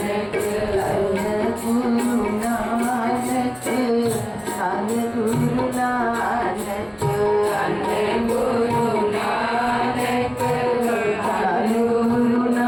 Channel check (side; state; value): both; identical; correlation 1.00